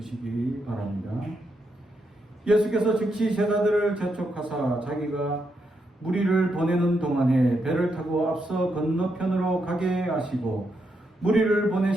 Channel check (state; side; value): normal; both; correlation 0.81